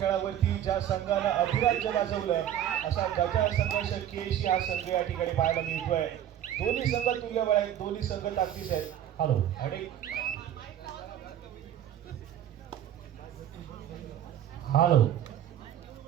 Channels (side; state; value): left; quieter; 10.8 dB